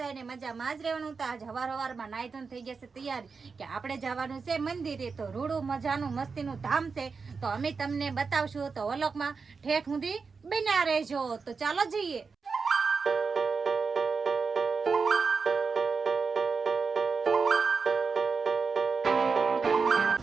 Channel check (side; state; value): left; quieter; 5.0 dB